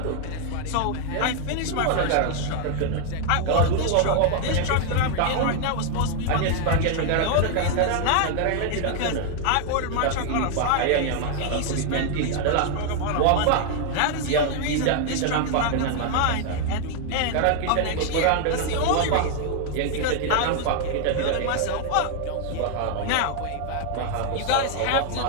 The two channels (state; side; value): different; both; correlation 0.00